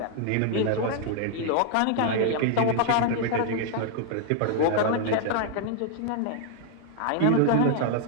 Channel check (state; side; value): different; both; correlation 0.00